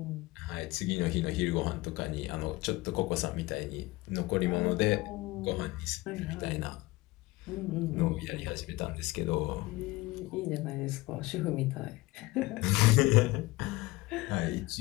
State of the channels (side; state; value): right; quieter; 20.6 dB